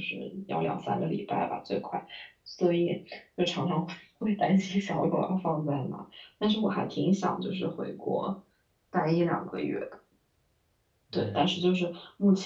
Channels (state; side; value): identical; both; correlation 1.00